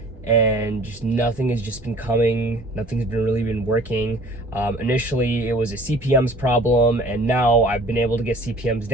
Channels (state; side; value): normal; both; correlation 0.49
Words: and just nothing has just been coming. Nothing's really been working. Initially, it was a CPMs problem, and now I've been able to get CPMs